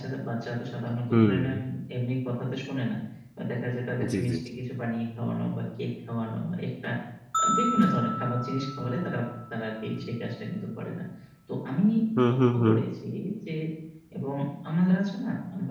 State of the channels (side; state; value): both; identical; correlation 1.00